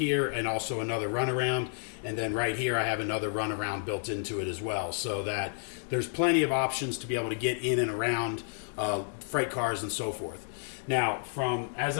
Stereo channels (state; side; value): silent; right; 57 dB below the other